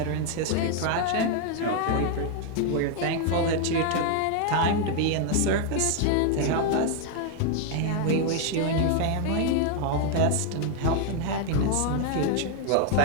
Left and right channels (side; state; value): both; different; correlation 0.00